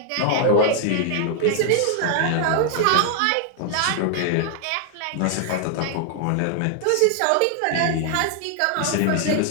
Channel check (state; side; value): different; both; correlation 0.00